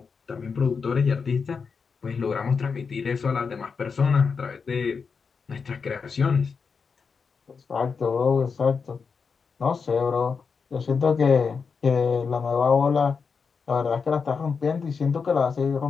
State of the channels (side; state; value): right; quieter; 5.5 dB